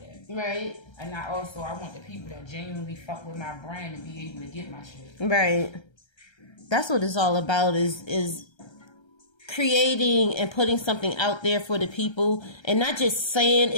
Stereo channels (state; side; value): late; right; 1.3 ms